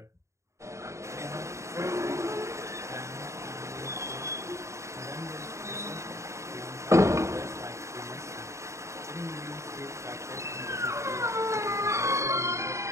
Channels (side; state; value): left; late; 0.14 ms